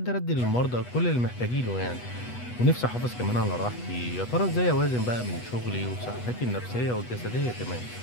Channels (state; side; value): late; right; 8.2 ms